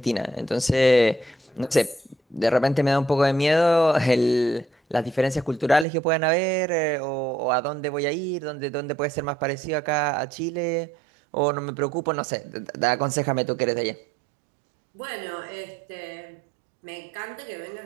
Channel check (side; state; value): left; drops out; at 5.9 s